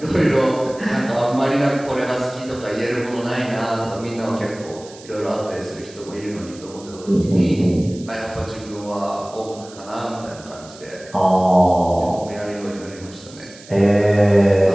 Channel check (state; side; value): noise; right; hiss, 20 dB below the sound